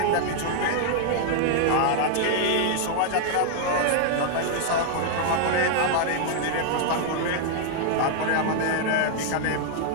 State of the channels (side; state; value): both; different; correlation 0.00